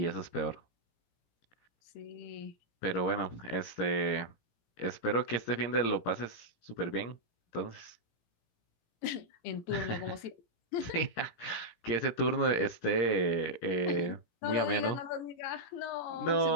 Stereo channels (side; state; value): right; late; 17 ms